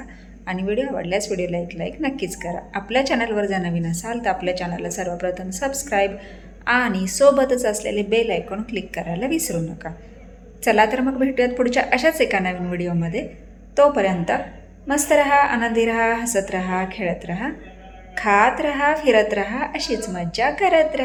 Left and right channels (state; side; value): identical; both; correlation 1.00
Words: आणि व्हिडिओ आवडल्यास व्हिडिओला एक लाईक नक्कीच करा. आपल्या चॅनलवर जर नवीन असाल तर आपल्या चॅनलला सर्वप्रथम सबस्क्राईब आणि सोबतच असलेले बेल आयकॉन क्लिक करायला विसरू नका. चला तर मग भेटूयात पुढच्या अशाच एका नवीन व्हिडिओमध्ये. तोपर्यंत मस्त रहा, आनंदी रहा, हसत रहा, खेळत रहा, खात रहा, फिरत रहा, अशीच मज्जा करत